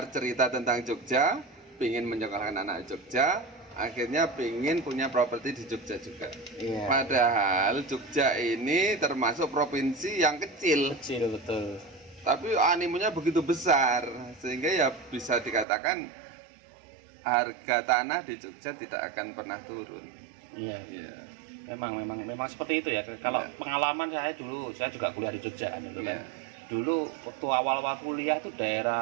cerita tentang Jogja, pingin menyekolahkan anak Jogja, akhirnya pingin punya properti di Jogja juga. Iya. Padahal Jogja ini termasuk provinsi yang kecil, Kecil betul. tapi animonya begitu besar sehingga ya bisa dikatakan harga tanah di Jogja tidak akan pernah turun. Iya. Iya. Memang seperti itu ya. Kalau Iya. pengalaman saya dulu, saya juga kuliah di Jogja kan itu kan. Iya. Dulu waktu awal-awal kuliah tuh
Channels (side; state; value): left; drops out; at 15.7 s